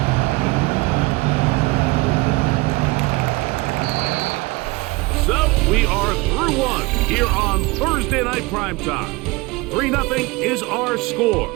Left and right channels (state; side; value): quieter; left; 23.6 dB